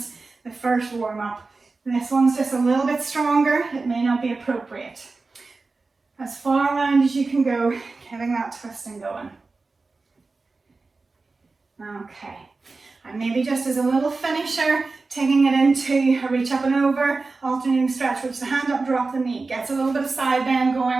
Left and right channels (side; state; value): left; quieter; 3.8 dB